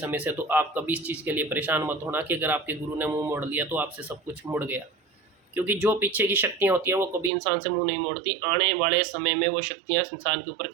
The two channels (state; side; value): drops out; left; at 7.3 s